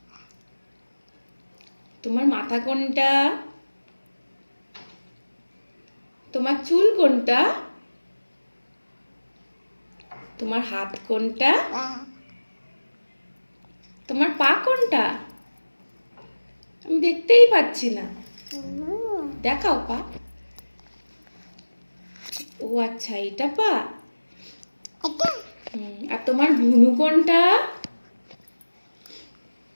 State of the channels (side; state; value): both; inverted; correlation -1.00